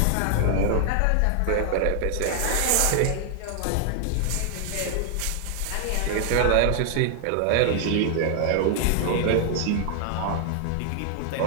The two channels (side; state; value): both; different; correlation 0.00